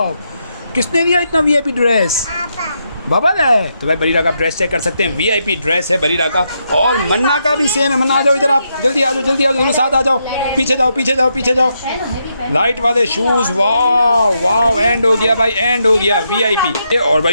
किसने दिया इतना VIP ड्रेस? बाबा है। तो भाई बरीरा का ड्रेस चेक कर सकते हैं, VIP ड्रेस है बरीरा का। और मन्ना का भी सेम है। मन्ना आ जाओ इधर, आप जल्दी आ जाओ, जल्दी आ जाओ, साथ आ जाओ। पीछे जाओ पीछे जाओ पीछे जाओ। लाइट वाले शूज़, वाह वाह, एंड हो गया भाई, एंड हो गया VIP। और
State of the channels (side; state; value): both; inverted; correlation -0.81